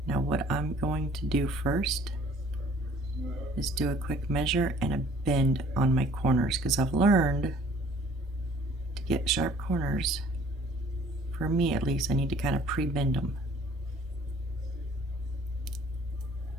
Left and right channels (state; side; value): normal; both; correlation 0.55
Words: Now what I'm going to do first is do a quick measure and a bend on my corners, because I've learned to get sharp corners, for me at least, I need to kind of pre-bend them.